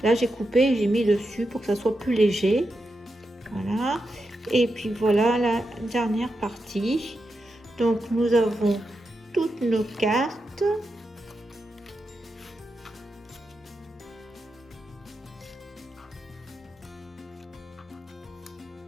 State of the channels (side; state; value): both; normal; correlation 0.87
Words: là j'ai coupé et j'ai mis dessus pour que ça soit plus léger. Voilà. Et puis voilà la dernière partie. Donc nous avons toutes nos cartes.